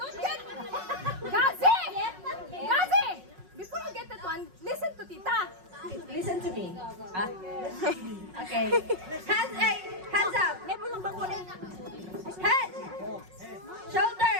get... Gazi! Gazi! Before you get that one, listen to Tita. Listen to me. Okay. Hands up. Head. Shoulder.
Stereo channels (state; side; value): late; left; 5.4 ms